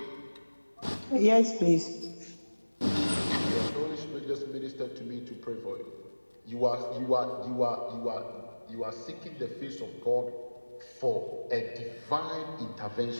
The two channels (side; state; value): both; inverted; correlation -1.00